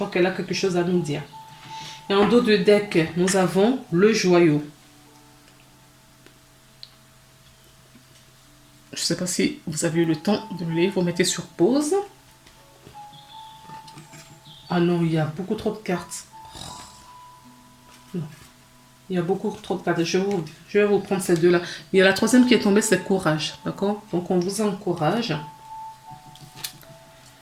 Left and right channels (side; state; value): both; identical; correlation 1.00